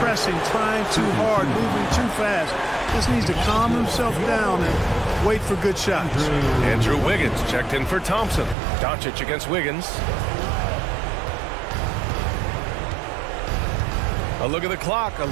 trying too hard, moving too fast. Just needs to calm himself down and wait for good shots. Andrew Wiggins checked in for Thompson. Doncic against Wiggins. A look at the clock. A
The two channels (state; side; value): drops out; left; at 8.6 s